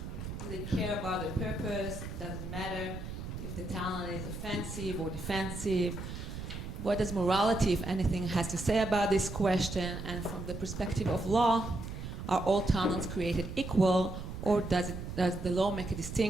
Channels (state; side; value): noise; right; rumble, 8 dB below the sound